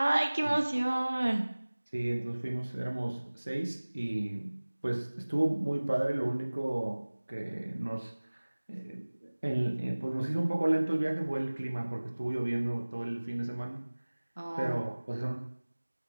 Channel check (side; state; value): both; inverted; correlation -1.00